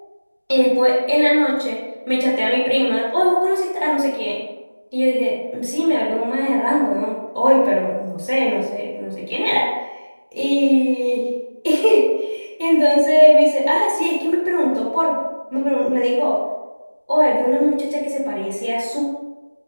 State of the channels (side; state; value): both; inverted; correlation -1.00